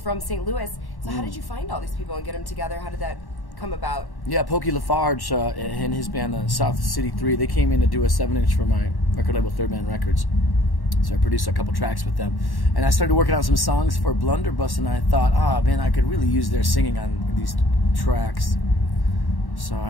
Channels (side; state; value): right; late; 1.1 ms